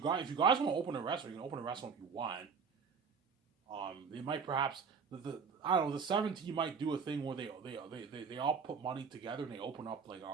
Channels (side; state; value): left; quieter; 5.8 dB